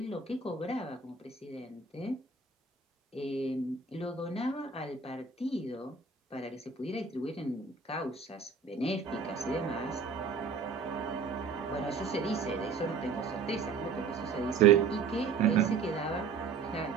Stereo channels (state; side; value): quieter; left; 5.1 dB